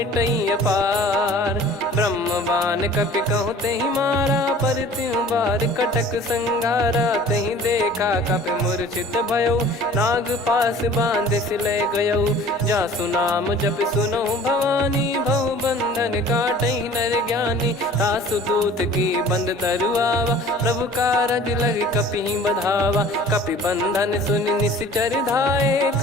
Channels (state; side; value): normal; both; correlation 0.47